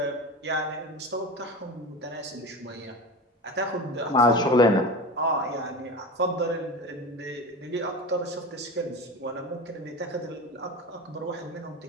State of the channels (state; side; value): normal; both; correlation 0.28